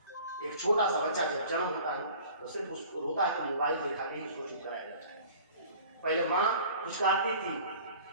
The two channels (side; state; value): both; inverted; correlation -0.46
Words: एक छोटा सा बच्चा जब जन्म होता है तो सिर्फ उसको रोता है तो मोबाइल दिखा के ही उसको चुप कराया जाता है। पहले माँ पुचकारती थी,